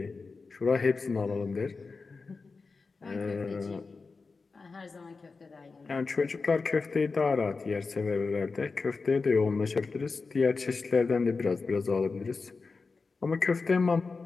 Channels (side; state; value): right; quieter; 4.3 dB